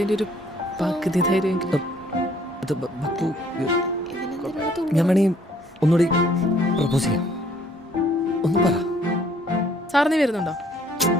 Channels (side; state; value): both; normal; correlation 0.62